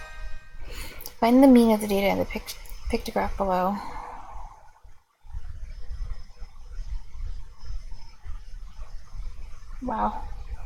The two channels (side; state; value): both; identical; correlation 1.00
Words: Find the mean of the data in the pictograph below. Wow.